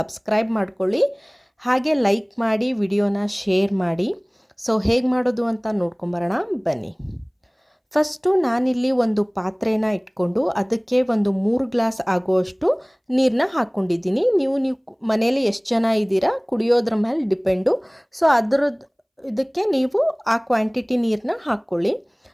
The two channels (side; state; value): both; identical; correlation 1.00